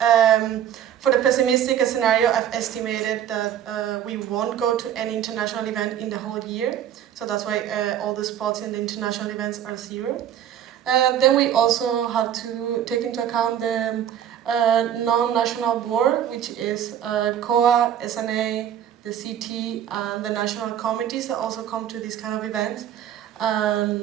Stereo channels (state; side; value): quieter; left; 10.2 dB